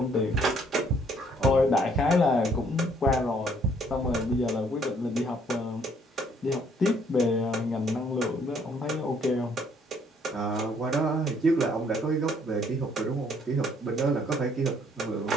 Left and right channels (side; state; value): both; normal; correlation 0.64